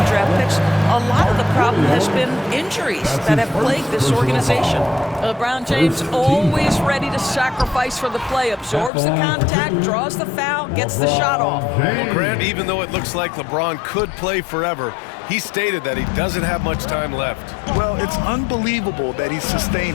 draft picks. A lot of the problem has been injuries that have plagued this organization. LeBron James always ready to sacrifice for the play, absorbs the contact, draws the foul, gets the shot off. Well, Grant, even though it looks like LeBron could play forever, he stated that he doesn't have much time left. Well, it's unbelievable that he's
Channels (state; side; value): drops out; right; at 8.9 s